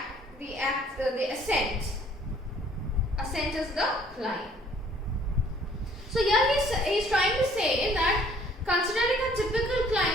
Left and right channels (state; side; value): normal; both; correlation 0.58